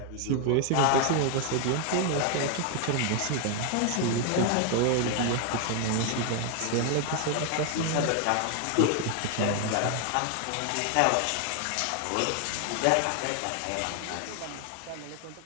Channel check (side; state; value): both; different; correlation 0.00